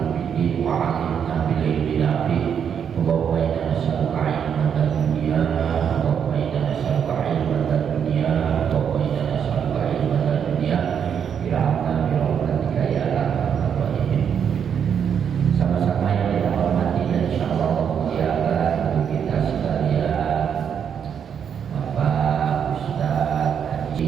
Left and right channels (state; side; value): quieter; left; 7.8 dB